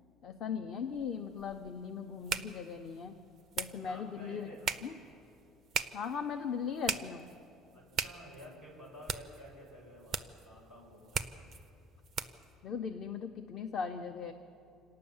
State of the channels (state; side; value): noise; left; hum, 30 dB below the sound